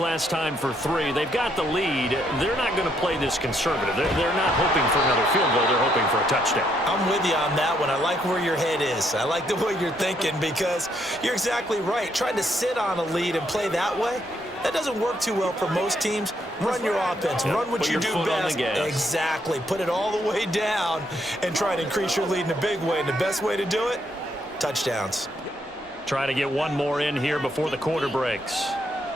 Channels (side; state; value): both; normal; correlation 0.73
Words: time for 3. They've got the lead. They're not going to play this conservative. They're not hoping for another field goal. They're hoping for a touchdown. I'm with you on that one. I like where your head is. I like the way you're thinking because you're exactly right. Trying to sit on a lead and play that way, that doesn't work too well for most teams. Run your offense. Run what you do best. Exactly. Put it all the way down and try to increase your lead in a big way. And the best way to do it, touchdowns. Trying to get one more in here before the quarter breaks.